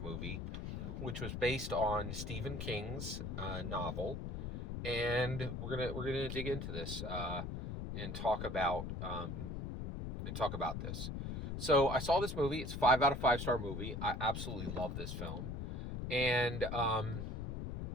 movie, which was based on Stephen King's novel, and we're gonna dig into this and talk about this. So I saw this movie. It's 5 out of 5 star movie. I absolutely love this film, and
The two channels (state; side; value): noise; left; rumble, 4 dB below the sound